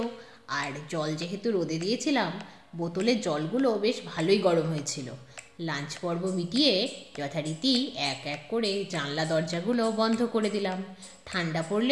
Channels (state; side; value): identical; both; correlation 1.00